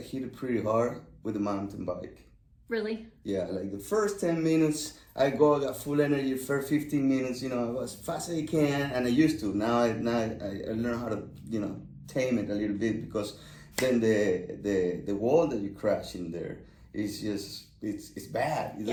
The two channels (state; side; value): identical; both; correlation 1.00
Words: it pretty hard with the mountain bike. Really? Yeah, like the first 10 minutes, I got full energy. First 15 minutes, you know, I was fast as I can, and I used to. Now I learn how to, you know, tame it a little bit, because then the wall that you crash in there is just it's bad. It